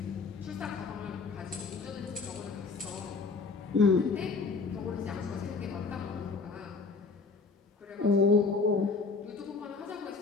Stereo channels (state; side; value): quieter; right; 4.4 dB